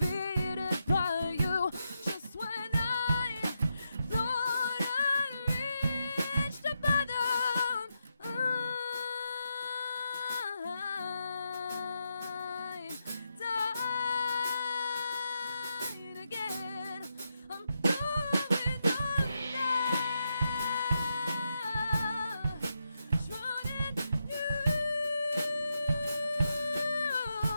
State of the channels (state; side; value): inverted; both; correlation -0.84